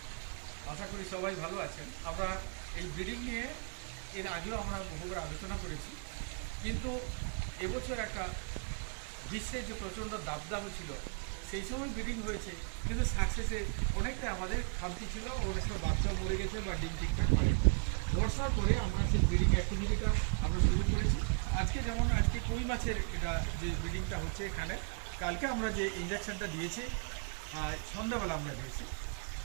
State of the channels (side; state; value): left; quieter; 35.9 dB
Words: আশা করি সবাই ভালো আছেন। আমরা এই ব্রিডিং নিয়ে এর আগেও আমরা বহুবার আলোচনা করেছি, কিন্তু এবছর একটা বিশ্বে যে প্রচণ্ড দাবদাহ ছিল, সেই সময় ব্রিডিং হয়েছে, কিন্তু সাকসেসে অনেকটা আমাদের খামতি ছিল। অনেক সময় বাচ্চা মরে গেছে বা ডিম ঠিকঠাক করে বর্ষার পরে আমরা সেই ব্রিডিং অ্যাক্টিভিটিটা আমরা শুরু করেছি। আজকে কই মাছের এটা যে ব্রিডিংটা হচ্ছে এখানে, কালকে আমরা যে ইঞ্জেকশনটা দিয়েছি সন্ধ্যাবেলা আমরা দিয়েছি,